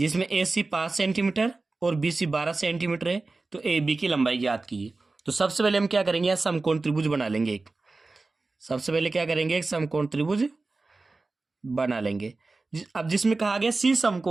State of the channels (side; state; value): left; quieter; 3.6 dB